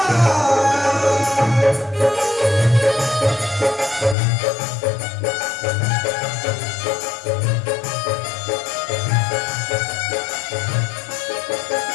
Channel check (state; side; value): drops out; right; at 4.2 s